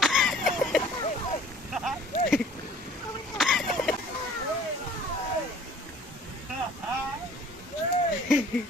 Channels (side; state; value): both; normal; correlation 0.52